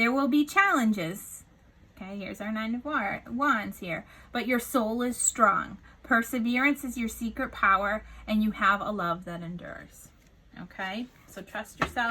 will be challenges, Okay, here's our Nine of Wands here. But your soul is strong. Perseverance is your secret power, and you have a love that endures. Okay, so trust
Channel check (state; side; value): identical; both; correlation 1.00